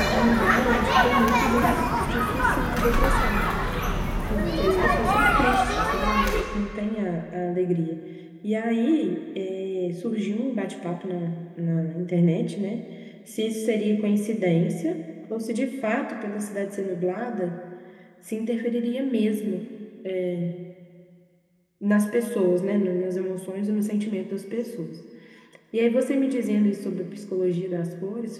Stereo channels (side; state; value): both; identical; correlation 1.00